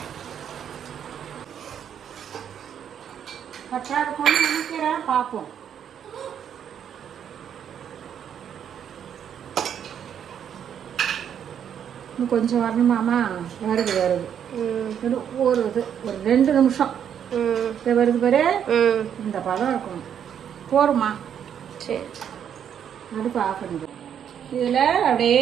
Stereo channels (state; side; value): quieter; left; 8.8 dB